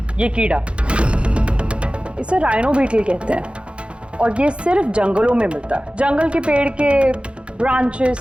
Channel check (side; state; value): left; late; 0.058 ms